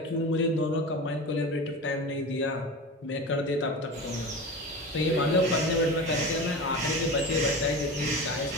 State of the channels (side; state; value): both; normal; correlation 0.29